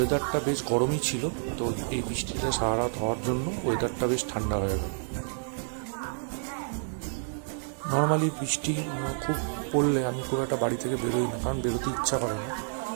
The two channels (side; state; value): left; silent; 56 dB below the other